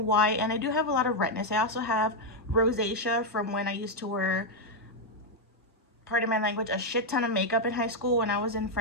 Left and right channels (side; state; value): both; normal; correlation 0.00